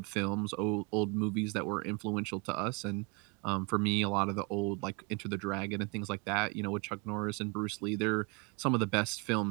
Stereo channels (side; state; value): left; quieter; 29.8 dB